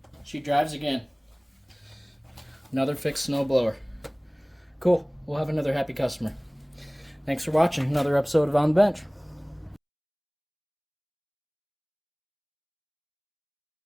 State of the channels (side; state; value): both; identical; correlation 1.00